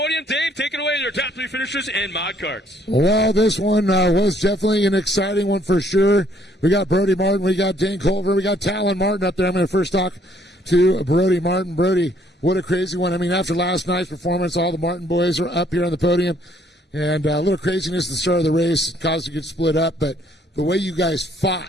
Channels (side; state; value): both; normal; correlation 0.64